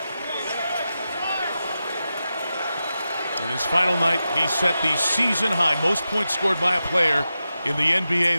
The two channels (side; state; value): both; inverted; correlation -0.91